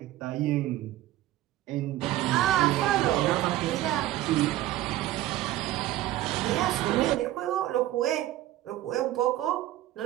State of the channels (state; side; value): quieter; left; 14.9 dB